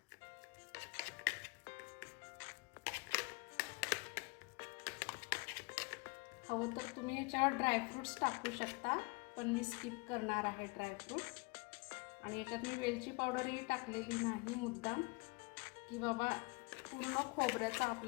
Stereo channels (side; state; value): right; quieter; 28.9 dB